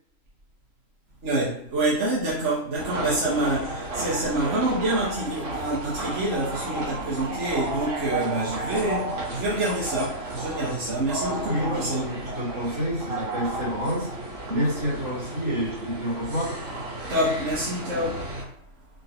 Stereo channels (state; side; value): late; left; 3.0 ms